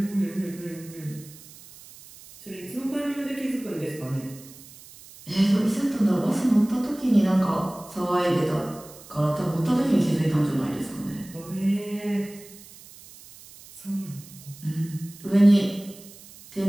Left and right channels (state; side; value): noise; right; hiss, 20 dB below the sound